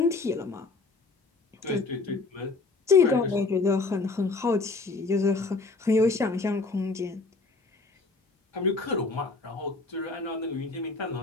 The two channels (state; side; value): quieter; right; 3.8 dB